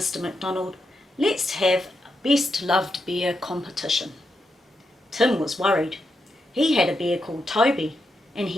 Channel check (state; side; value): normal; both; correlation 0.84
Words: McDonald. Let's have a best loved bear competition. Tim was worried. He had a bear called Toby, and